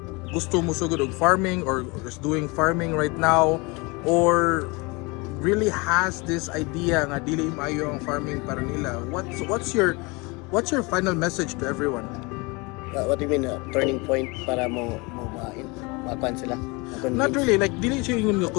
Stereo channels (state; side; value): quieter; right; 27.1 dB